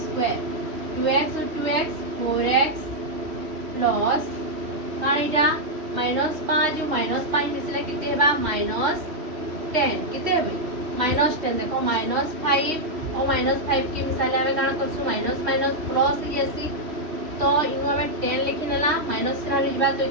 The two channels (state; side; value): late; left; 3.1 ms